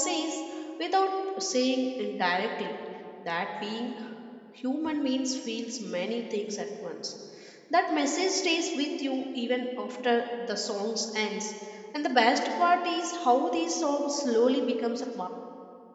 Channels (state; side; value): identical; both; correlation 1.00